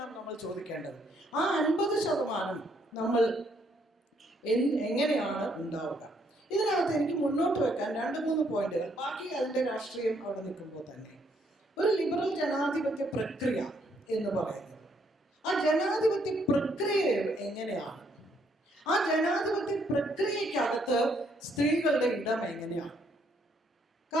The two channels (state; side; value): normal; both; correlation 0.71